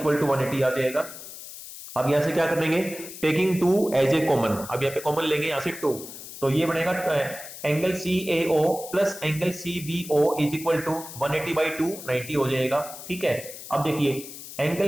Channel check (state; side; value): noise; left; hiss, 13 dB below the sound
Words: टू 180 आ जाएगा। अब यहां से क्या कर लेंगे, टेकिंग 2 एज ए कॉमन, अब यहाँ पे कॉमन लेंगे यहां से 2, तो ये बनेगा angle CAO plus angle CBO is equal to 180/2 90 हो जाएगा। ठीक है, अब देखिए